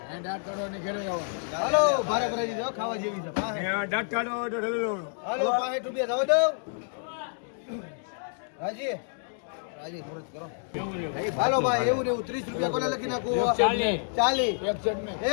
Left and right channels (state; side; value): silent; right; 59 dB below the other